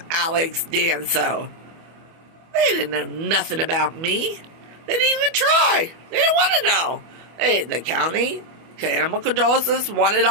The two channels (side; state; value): left; late; 25 ms